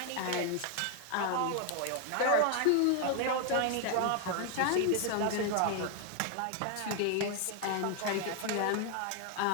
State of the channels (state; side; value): different; both; correlation 0.00